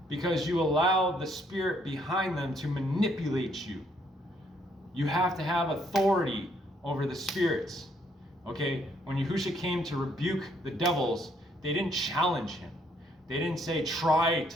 because you allow the spirit behind them to manipulate you. You have to have authority over the spirits. Okay, when Yahusha came to rebuke the devils, they didn't challenge him. They didn't say, try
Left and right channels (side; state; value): both; normal; correlation 0.69